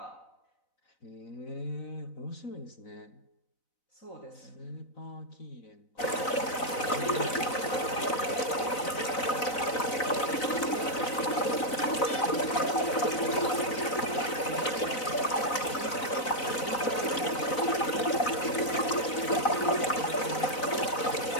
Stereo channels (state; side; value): late; right; 4.0 ms